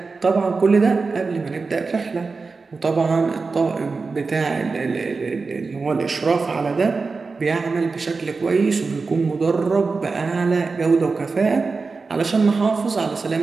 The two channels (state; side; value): quieter; left; 4.3 dB